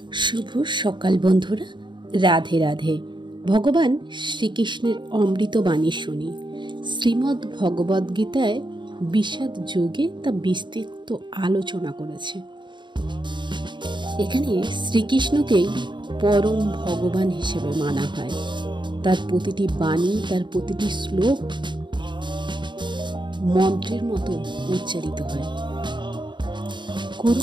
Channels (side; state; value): left; late; 0.23 ms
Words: শুভ সকাল বন্ধুরা, রাধে রাধে। ভগবান শ্রীকৃষ্ণের অমৃত বাণী শুনি। শ্রীমদ্ ভগবদ্গীতায় বিষাদ যোগে তা বিস্তৃত আলোচনা করেছে। এখানে শ্রীকৃষ্ণকেই পরম ভগবান হিসেবে মানা হয়। তার প্রতিটি বাণী, তার প্রতিটি শ্লোক মন্ত্রের মতো উচ্চারিত হয়।